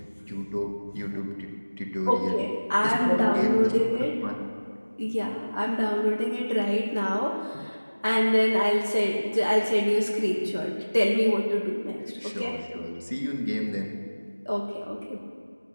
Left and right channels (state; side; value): inverted; both; correlation -1.00